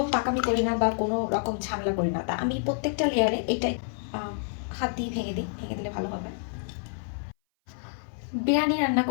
পাকামি করি না বা কোনো রকম ঝামেলা করি না, তা আমি প্রত্যেকটা লেয়ারে এটাই হাত দিয়ে ভেঙে দিই, ভেঙে দিলে ভালো হবে। বিরিয়ানি রান্না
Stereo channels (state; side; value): silent; right; 57 dB below the other